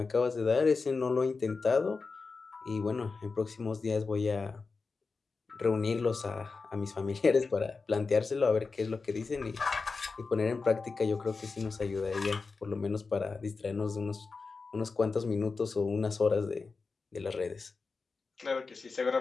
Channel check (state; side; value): quieter; right; 4.4 dB